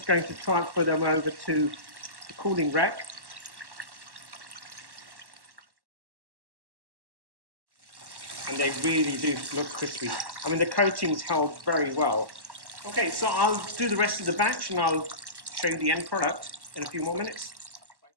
going to transfer them over to the cooling rack. And they really do look crispy. I mean, the coating's held very well. Okay, so I'll do the rest of the batch and I'll show you the end product in a few more minutes.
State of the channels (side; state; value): left; late; 1.1 ms